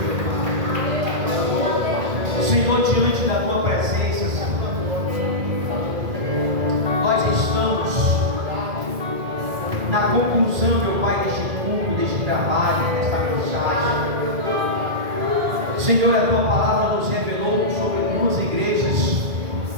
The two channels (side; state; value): left; late; 1.9 ms